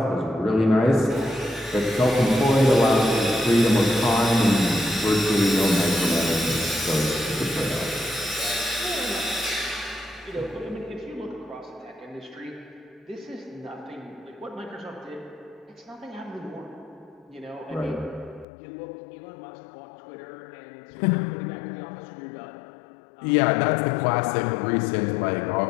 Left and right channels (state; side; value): drops out; right; at 18.4 s